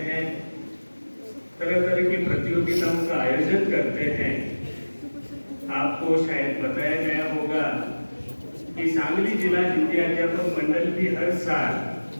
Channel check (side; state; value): both; inverted; correlation -1.00